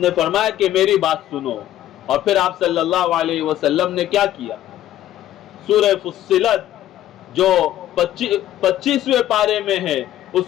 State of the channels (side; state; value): right; quieter; 12.8 dB